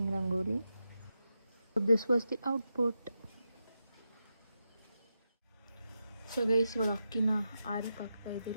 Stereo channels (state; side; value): inverted; both; correlation -0.88